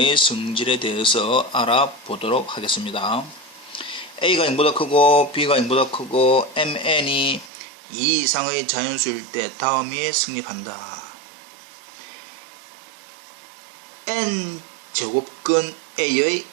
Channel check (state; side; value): drops out; left; at 7.5 s